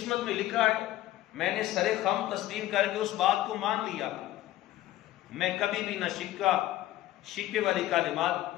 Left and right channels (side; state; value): right; quieter; 14.9 dB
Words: میں لکھا ہے میں نے سر خم تسلیم کر کے اس بات کو مان لیا، میں کبھی بھی نہ شکوے والی کلمات